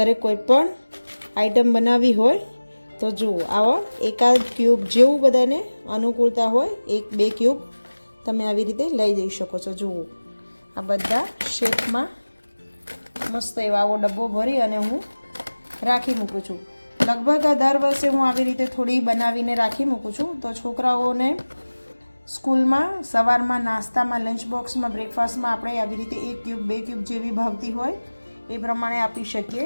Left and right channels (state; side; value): inverted; both; correlation -1.00